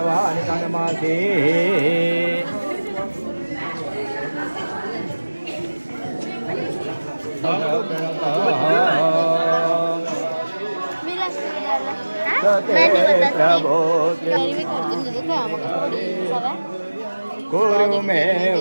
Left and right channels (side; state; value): both; inverted; correlation -1.00